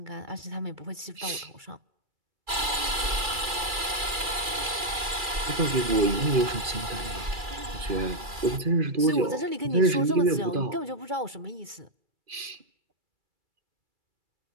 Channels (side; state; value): left; late; 2.4 ms